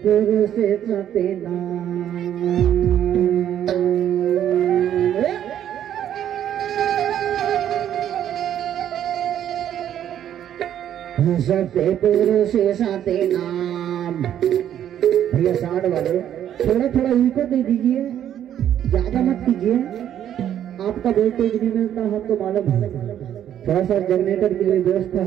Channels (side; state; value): left; quieter; 10.5 dB